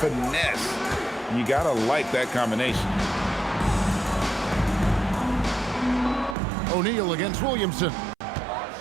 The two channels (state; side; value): drops out; left; at 6.4 s